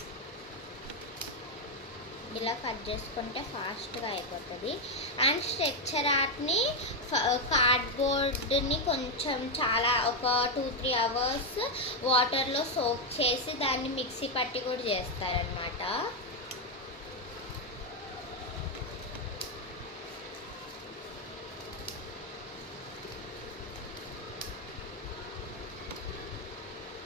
ఇలా కట్ చేసుకుంటే ఫాస్ట్గా అయిపోతుంది. అండ్ స్ట్రక్చర్ ఆర్ట్ని కార్డ్బోర్డ్ని కొంచెం ఒక 2-3 అవర్స్ వాటర్లో సోక్ చేసి దాన్ని మిక్సీ పట్టి కూడా చేస్తారనమాట.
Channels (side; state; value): both; normal; correlation 0.04